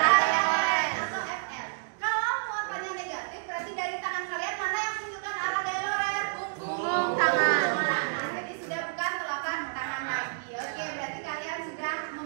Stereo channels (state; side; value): silent; left; digital silence